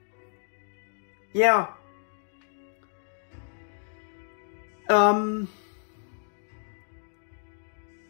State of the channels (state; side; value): silent; right; digital silence